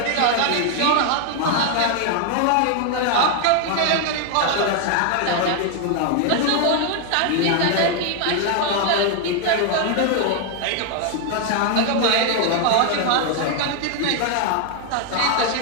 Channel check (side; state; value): both; different; correlation 0.00